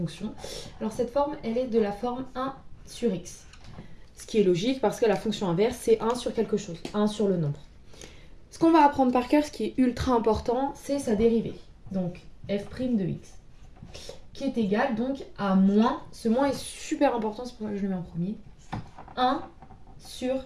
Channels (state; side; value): identical; both; correlation 1.00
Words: Alors cette forme, elle est de la forme 1 sur x. Ce qui est logique parce que la fonction inverse, c'est 1 sur quelque chose, 1 sur le nombre. Ce qu'on va apprendre par cœur, ce qui est ultra important, c'est sa dérivée. Donc f' de x, qui est égal donc à moins, ce moins est super important, c'est pour ça que je le mets en premier, 1 sur